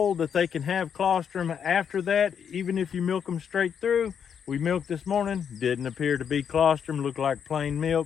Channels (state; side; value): quieter; right; 7.7 dB